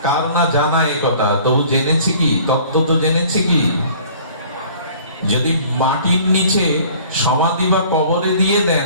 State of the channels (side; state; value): both; inverted; correlation -0.51